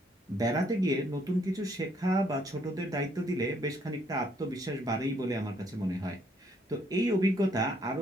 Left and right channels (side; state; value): both; normal; correlation 0.68